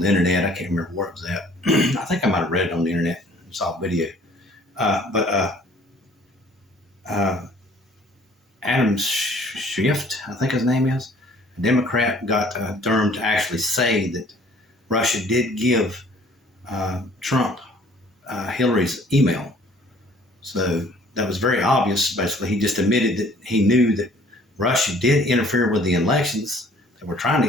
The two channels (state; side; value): normal; both; correlation 0.55